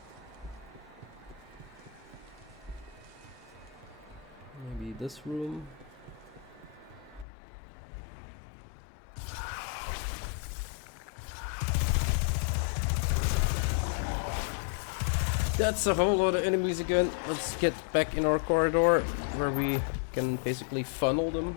Maybe this room. That's a whole lot of enemies again. Let's get back in our corridor where we can basically funnel them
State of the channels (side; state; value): right; drops out; at 7.2 s